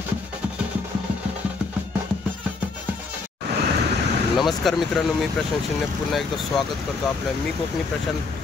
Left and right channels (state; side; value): quieter; right; 4.2 dB